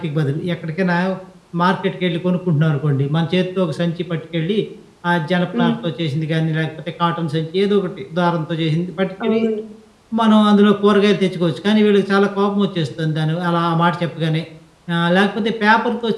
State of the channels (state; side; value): identical; both; correlation 1.00